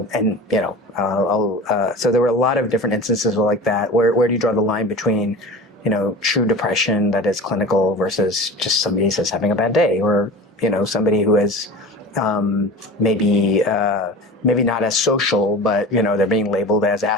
and so there were a lot of different instances like that. Where do you draw the line between true depression that is clinical versus just somebody who's having a bad day, or somebody who is maybe not as social, but they're being labeled as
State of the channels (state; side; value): normal; both; correlation 0.35